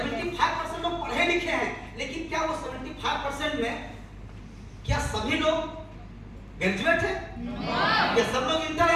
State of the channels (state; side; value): identical; both; correlation 1.00